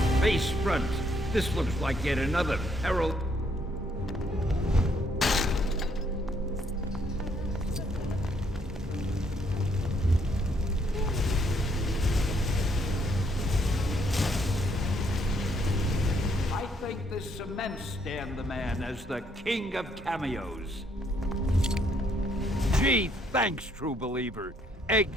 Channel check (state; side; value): normal; both; correlation 0.70